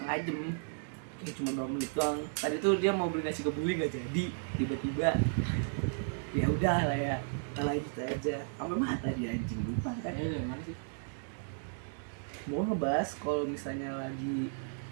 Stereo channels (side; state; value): left; silent; digital silence